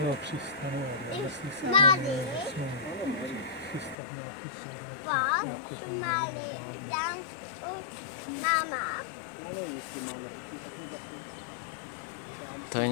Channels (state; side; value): drops out; right; at 4.0 s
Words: přistane, ale jestli se přistane nějaký To je